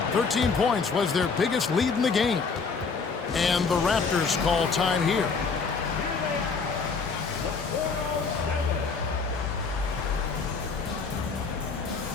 13 points was their biggest lead in the game. And the Raptors call time here.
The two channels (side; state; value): right; quieter; 4.9 dB